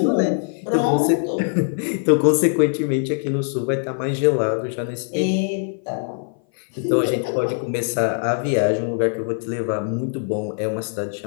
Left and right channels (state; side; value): silent; right; 58 dB below the other